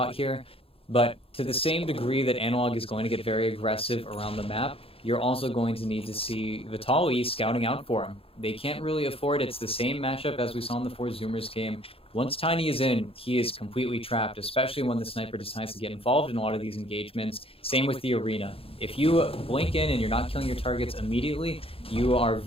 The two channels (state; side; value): late; right; 0.27 ms